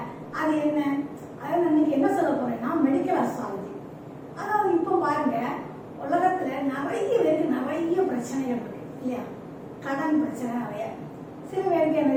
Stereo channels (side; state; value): both; identical; correlation 1.00